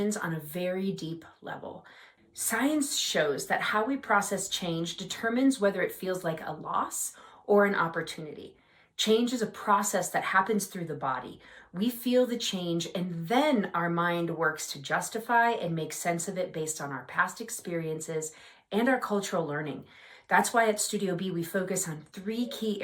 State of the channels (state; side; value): identical; both; correlation 1.00